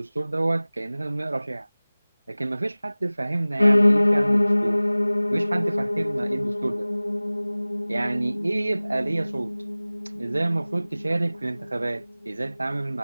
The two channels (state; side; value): inverted; both; correlation -0.99